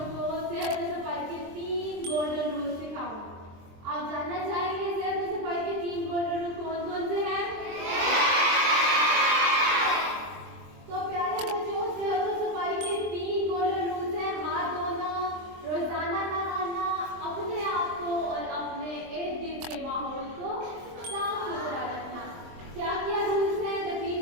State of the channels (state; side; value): late; left; 23 ms